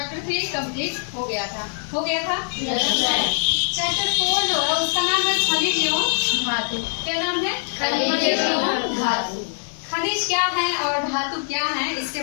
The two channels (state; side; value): silent; right; digital silence